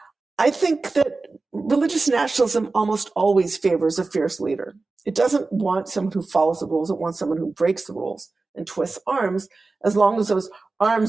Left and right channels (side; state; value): left; quieter; 3.7 dB